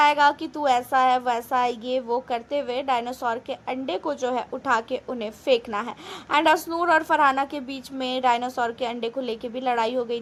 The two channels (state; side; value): identical; both; correlation 1.00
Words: कि तू ऐसा है वैसा है, ये वो करते हुए डायनासोर के अंडे को जो है उठा के उन्हें फेंकना है। एंड असनूर और फरहाना के बीच में डायनासोर के अंडे को लेके भी लड़ाई हो गई